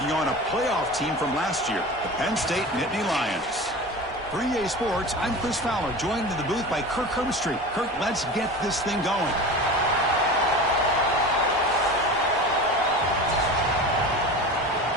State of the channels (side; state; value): both; normal; correlation 0.32